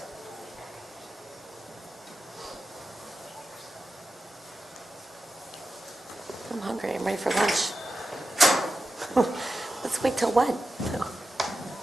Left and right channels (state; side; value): normal; both; correlation 0.91